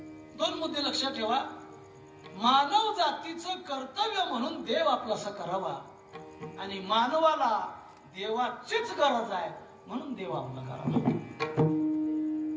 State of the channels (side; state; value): both; identical; correlation 1.00